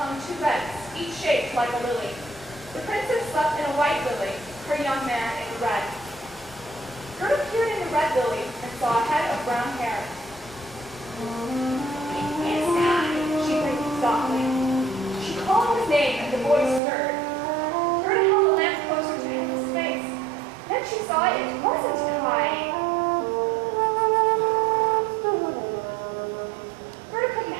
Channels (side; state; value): left; drops out; at 16.8 s